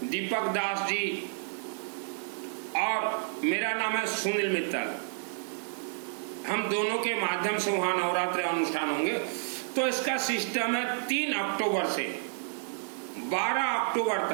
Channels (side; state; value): left; silent; digital silence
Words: दीपक दास जी और मेरा नाम है सुनील मित्तल। हम दोनों के माध्यम से वहां नवरात्रि अनुष्ठान होंगे। तो इसका सिस्टम है 3 अक्टूबर से 12 अक्टूबर